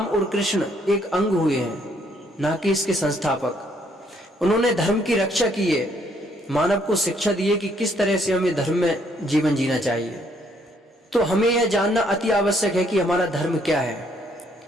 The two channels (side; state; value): both; normal; correlation 0.68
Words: और कृष्ण एक अंग हुए हैं, ना कि इसके संस्थापक। उन्होंने धर्म की रक्षा की है, मानव को शिक्षा दी है कि किस तरह से हमें धर्म में जीवन जीना चाहिए। तो हमें यह जानना अति आवश्यक है कि हमारा धर्म क्या है।